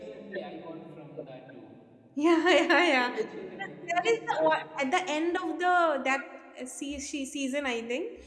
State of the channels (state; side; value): identical; both; correlation 1.00